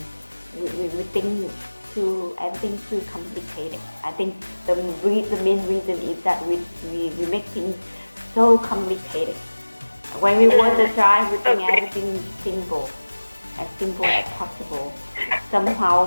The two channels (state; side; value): inverted; both; correlation -1.00